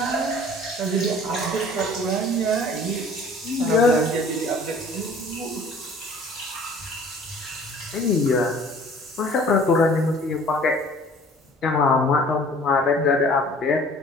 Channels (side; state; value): both; normal; correlation 0.50